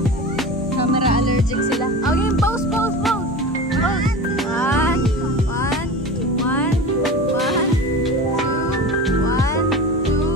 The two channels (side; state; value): both; normal; correlation 0.31